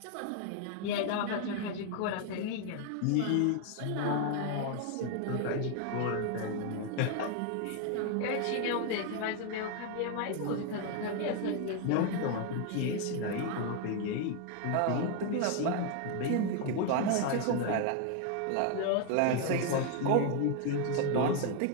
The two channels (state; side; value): different; both; correlation 0.01